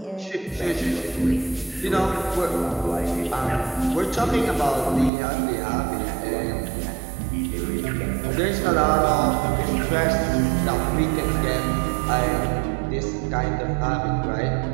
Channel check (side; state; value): left; drops out; at 5.1 s